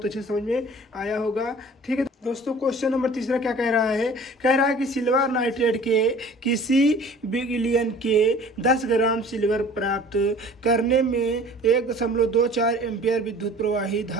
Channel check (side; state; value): both; normal; correlation 0.47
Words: अच्छे समझ में आया होगा। ठीक है दोस्तों, क्वेश्चन नंबर 3 क्या कह रहा है? कह रहा है कि सिल्वर नाइट्रेट के किसी बिलियन के 10 ग्राम सिल्वर प्राप्त करने में 1.24 एम्पियर विद्युत प्रवाही